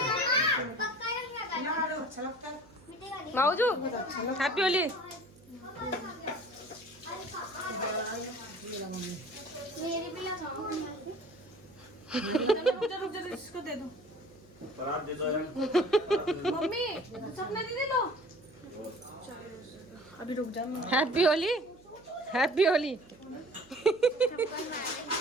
माऊजू हैप्पी होली। मेरी भी लगाओ। इसको दे दो परात दे दो यार। मम्मी, सपना दीदी लो। अभी रुक जा। Happy Holi, happy Holi.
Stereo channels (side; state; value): right; noise; hum, 25 dB below the sound